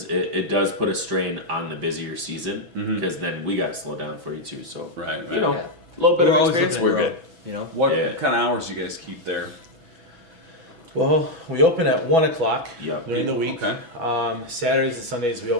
it does put a strain on the busier season because then we got to slow down for you too. So Right. a little bit We're of always experience, looking we're to good. grow, What Yeah. kind of hours do you guys keep there? well, we open at 1:00 Yeah. during the week. Okay. Saturdays and Sundays we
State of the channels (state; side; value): late; left; 6.1 ms